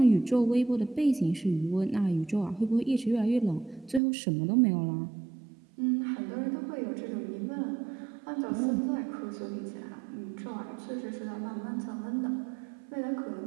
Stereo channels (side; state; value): left; drops out; at 4.0 s